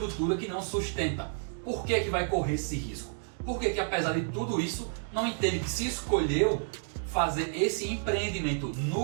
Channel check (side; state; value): left; silent; digital silence